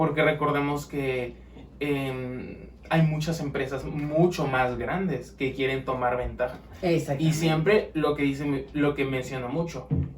recordemos que hay muchas empresas mucho más grandes que quieren tomar ventaja. Y siempre lo que menciona mucho.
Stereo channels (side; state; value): both; identical; correlation 1.00